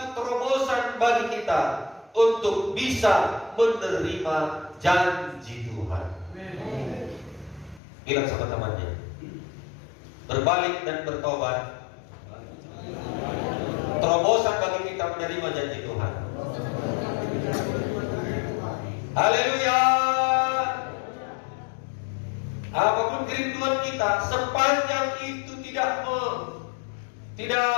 terobosan bagi kita untuk bisa menerima janji Tuhan. Bilang sama temannya, berbalik dan bertobat terobosan bagi kita menerima janji Tuhan. Haleluya. Apapun kerinduan kita, sepanjang itu tidak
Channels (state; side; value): drops out; right; at 7.8 s